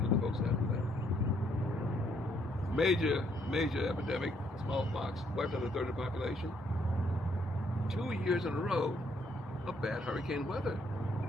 to the folks after that. Major epidemic, smallpox, wiped out a third of the population. 2 years in a row of bad hurricane weather.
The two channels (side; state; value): both; normal; correlation 0.70